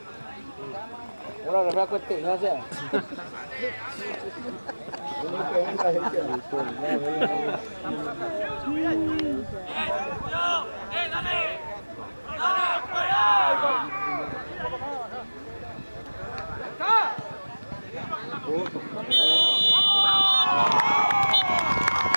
Ahora refresco este, gracias. Dale.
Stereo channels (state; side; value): inverted; both; correlation -1.00